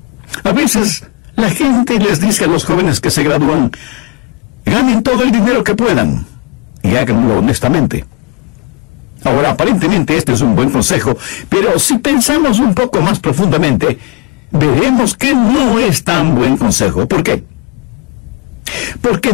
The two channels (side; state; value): right; quieter; 24.0 dB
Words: A veces la gente les dice a los jóvenes que se gradúan, ganen todo el dinero que puedan y háganlo honestamente. Ahora, aparentemente este es un buen consejo, pero si pensamos un poco más profundamente, veremos que no es tan buen consejo. ¿Por qué? Porque